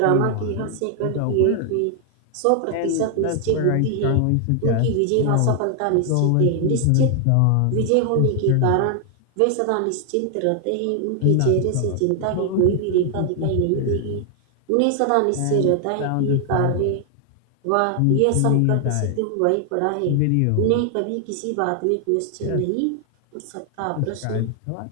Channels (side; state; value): both; different; correlation 0.00